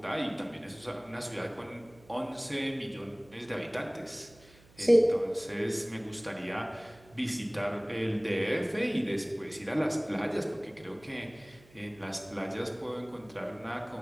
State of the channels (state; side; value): noise; right; hum, 25 dB below the sound